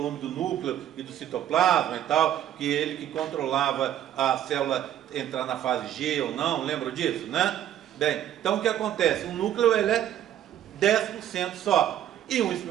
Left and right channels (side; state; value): left; quieter; 11.3 dB